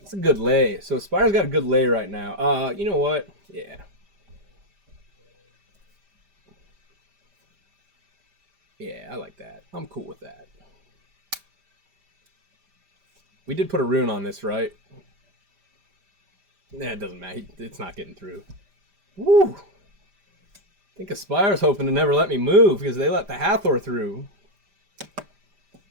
a good lay. So Spire's got a good lay right now. You know what? Yeah. Yeah, I like that. I'm cool with that. We did put a rune on this, right? Nah, it doesn't matter. It's not getting through. Woo! I think Aspire's hoping to never let me move because they let the Hathor through.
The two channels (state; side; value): late; left; 5.0 ms